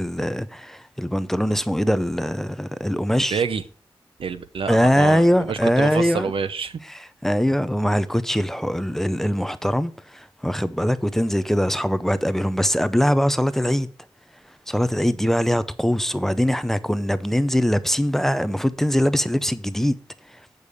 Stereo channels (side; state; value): both; normal; correlation 0.95